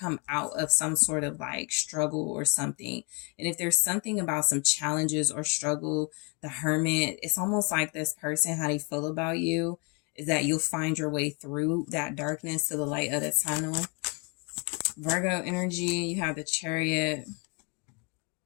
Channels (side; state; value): right; quieter; 32.8 dB